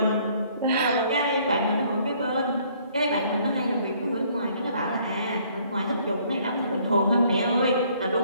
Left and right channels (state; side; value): inverted; both; correlation -0.62